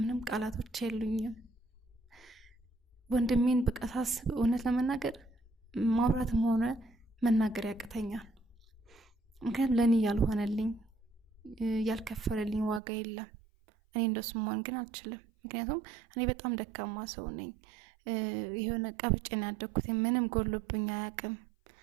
ቃላቶች የሉኝም ወንድሜን በቃ ሳስብ እውነት ለመናገር ማውራትም ሆነ መናገር ያቅተኛል ምክንያቱም ለኔ ያልሆነልኝ ያልከፈለልኝ ዋጋ የለም እኔ እንደሱ መሆን ግን አልችልም ምክንያቱም እኔ በጣም ደካማ ሰው ነኝ የሆነ ቀብጬን ያደኩት ምንም ጎልብኝ አያውቅም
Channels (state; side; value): drops out; left; at 12.8 s